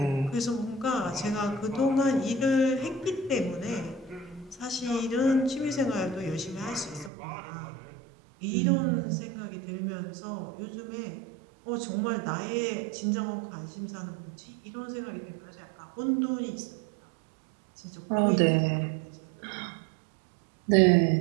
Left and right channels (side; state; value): left; drops out; at 7.1 s